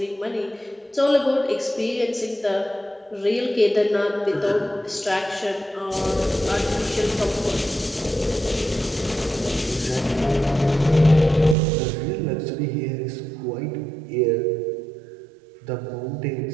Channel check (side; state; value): left; drops out; at 11.6 s